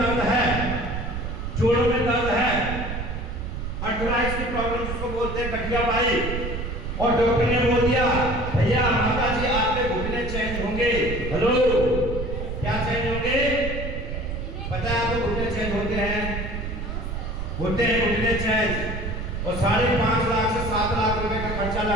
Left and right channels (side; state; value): right; noise; rumble, 5 dB below the sound